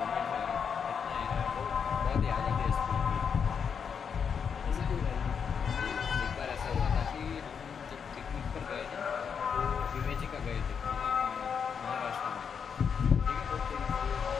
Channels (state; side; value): quieter; right; 6.7 dB